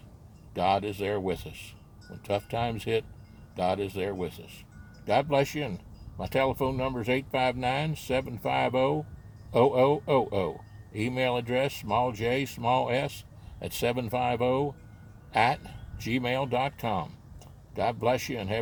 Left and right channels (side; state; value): both; identical; correlation 1.00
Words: God is there with us. When tough times hit, God is there with us. God bless you. And my telephone number is 859-750-0000. Email address, small j, small s, at 750 @gmail.com. God bless you, and